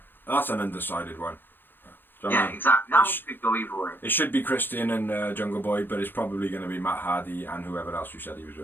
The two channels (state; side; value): late; right; 0.097 ms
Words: that's an undecided one. Yeah, exactly. That one could go either way. It should be Christian and Jungle Boy, but it's probably going to be Matt Hardy and whoever else you said he was